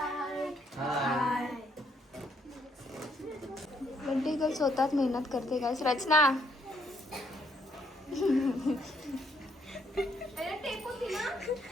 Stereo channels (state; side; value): normal; both; correlation 0.71